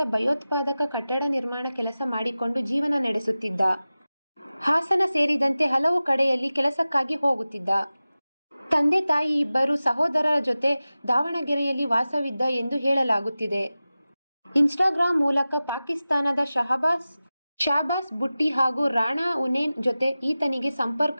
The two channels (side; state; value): both; inverted; correlation -0.96